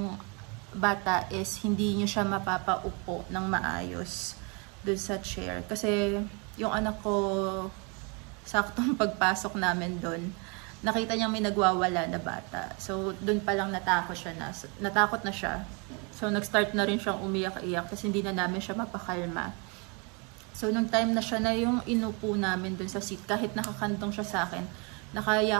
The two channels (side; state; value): left; quieter; 32.7 dB